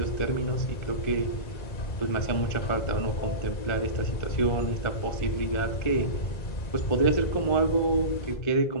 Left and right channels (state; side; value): late; right; 2.0 ms